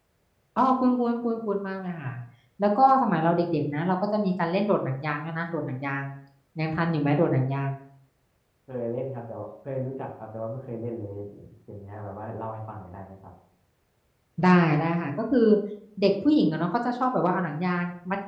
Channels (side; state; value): both; identical; correlation 1.00